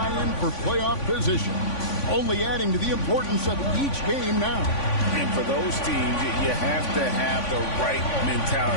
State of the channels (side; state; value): right; late; 3.5 ms